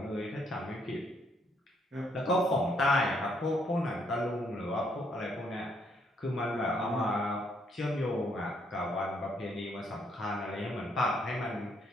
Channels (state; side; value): normal; both; correlation 0.71